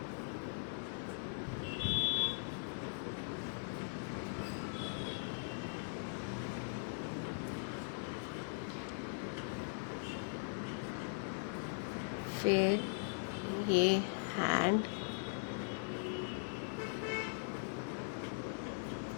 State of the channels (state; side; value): silent; right; digital silence